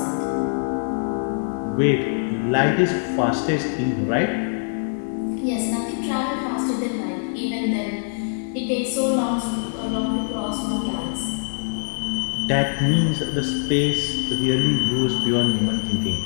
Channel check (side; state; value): right; silent; digital silence